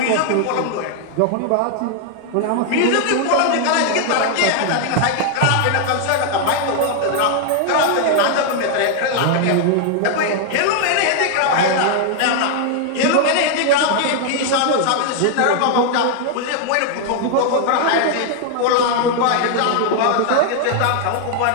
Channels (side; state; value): both; different; correlation 0.00